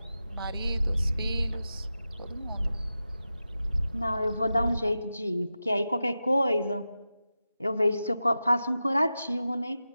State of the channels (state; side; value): inverted; both; correlation -0.92